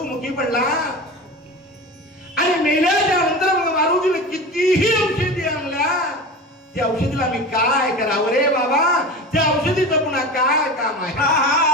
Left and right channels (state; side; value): normal; both; correlation 0.31